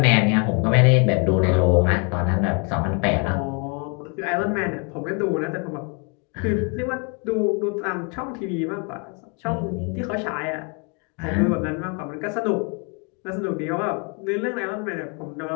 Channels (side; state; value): right; quieter; 34.8 dB